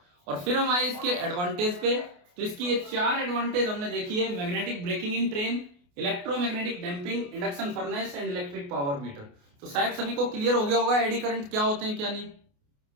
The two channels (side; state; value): left; late; 28 ms